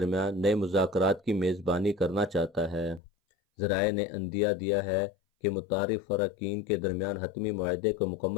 نئے مذاکرات کی میزبانی کرنا چاہتا ہے۔ ذرائع نے عندیہ دیا ہے کہ متعارف فریقین کے درمیان حتمی معاہدے کو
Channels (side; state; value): right; drops out; at 3.0 s